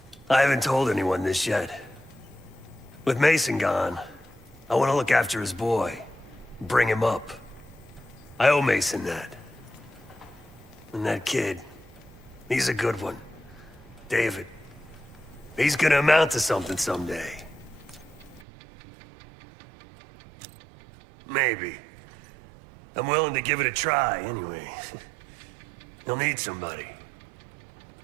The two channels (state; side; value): drops out; left; at 18.4 s